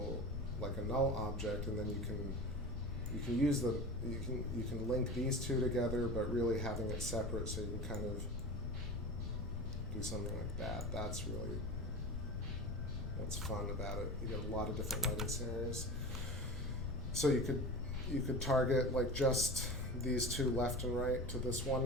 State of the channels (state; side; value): noise; left; rumble, 4 dB below the sound